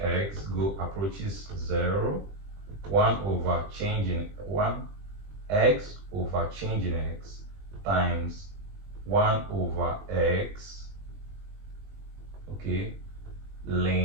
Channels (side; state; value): left; late; 20 ms